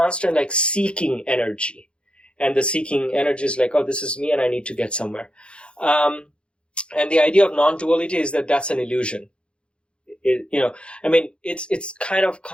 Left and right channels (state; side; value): late; right; 0.056 ms